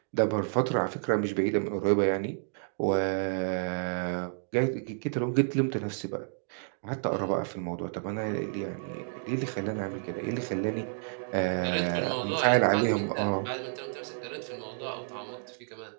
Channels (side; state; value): left; silent; digital silence